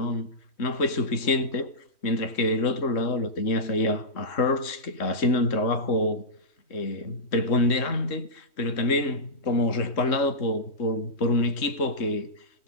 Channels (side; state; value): right; late; 3.2 ms